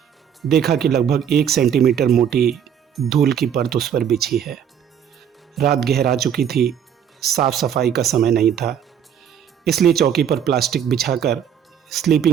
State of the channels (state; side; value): quieter; left; 8.6 dB